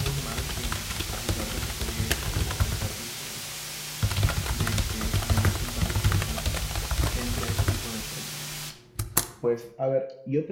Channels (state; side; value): identical; both; correlation 1.00